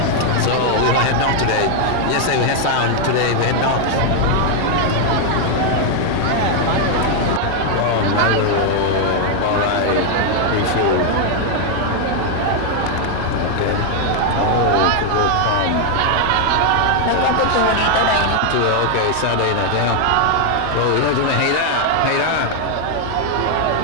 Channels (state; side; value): different; both; correlation 0.00